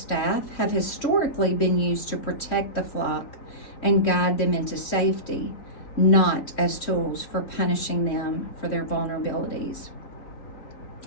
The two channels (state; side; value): late; right; 3.6 ms